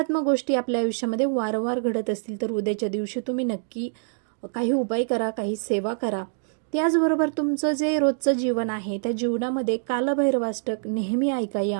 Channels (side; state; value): left; silent; digital silence